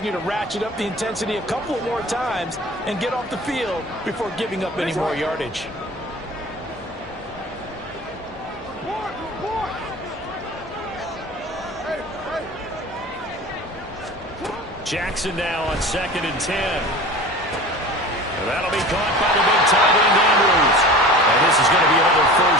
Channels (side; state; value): both; normal; correlation 0.38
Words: to ratchet up the intensity a couple of more times and get off the field before giving up any more yardage. Jackson now on 2nd and 10. And that'll be caught by the big tight end Andrews. And this is going to be another